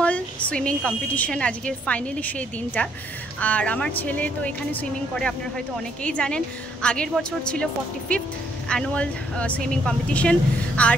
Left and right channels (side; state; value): both; normal; correlation 0.70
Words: সুইমিং কম্পিটিশন আজকে ফাইনালি সেই দিনটা। আর আমার ছেলে তো এখানে সুইমিং করে, আপনারা হয়তো অনেকেই জানেন। আগের বছর ছিল 45th অ্যানুয়াল সুইমিং কম্পিটিশন, আর